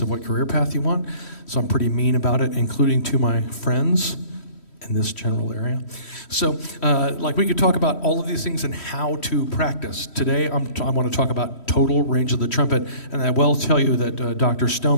of what career path you want. So I'm pretty mean about it, including to my friends in this general area. So we could talk about all of these things and how to practice. Today I want to talk about total range of the trumpet. And I will tell you that Dr.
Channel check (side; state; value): right; late; 3.1 ms